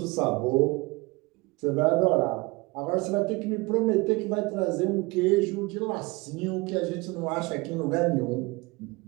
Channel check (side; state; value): left; quieter; 24.8 dB